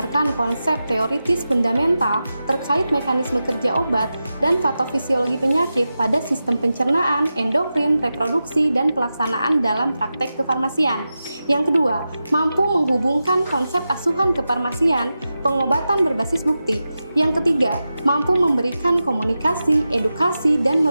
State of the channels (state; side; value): inverted; both; correlation -0.92